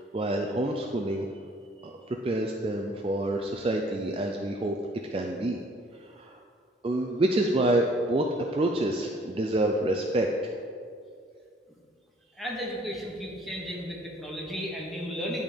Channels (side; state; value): both; normal; correlation 0.58